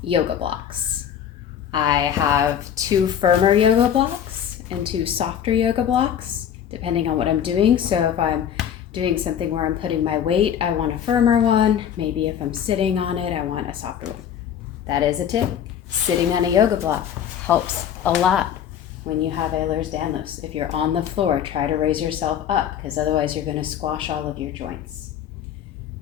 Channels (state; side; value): quieter; right; 9.2 dB